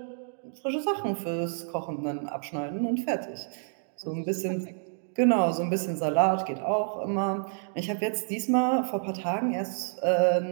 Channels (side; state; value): left; silent; digital silence